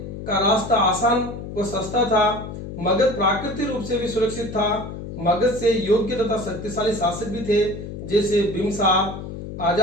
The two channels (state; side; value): noise; left; hum, 9 dB below the sound